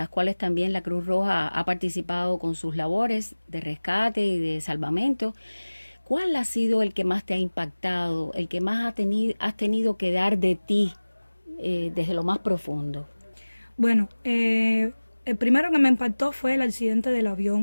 cuales también la Cruz Roja ha participado con sus labores de rescate y de salvamento, cuál ha sido el que más te ha impactado, el que más has tenido que dar de ti desde lo más profundo? Bueno, el primero que me impactó fue el accidente del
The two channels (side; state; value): both; inverted; correlation -1.00